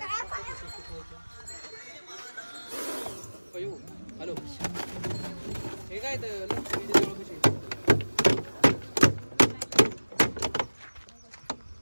हॅलो हे काय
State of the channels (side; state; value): both; inverted; correlation -1.00